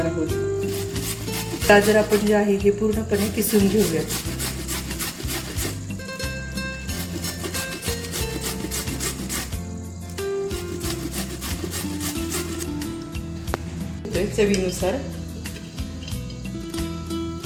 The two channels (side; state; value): both; identical; correlation 1.00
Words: आहोत. गाजर आपण जे आहे हे पूर्णपणे किसून घेऊयात. चवीनुसार